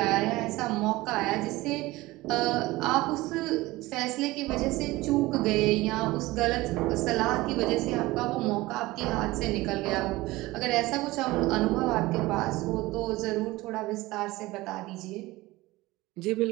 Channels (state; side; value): quieter; left; 19.5 dB